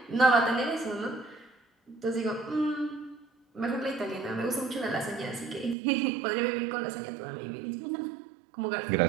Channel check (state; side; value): drops out; left; at 5.8 s